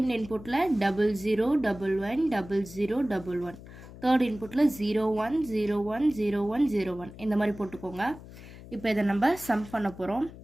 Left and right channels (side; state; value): left; noise; hum, 16 dB below the sound